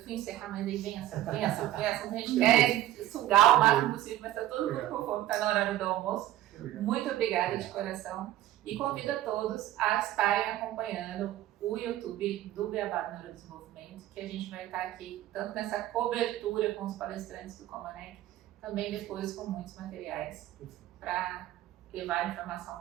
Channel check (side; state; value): left; quieter; 14.1 dB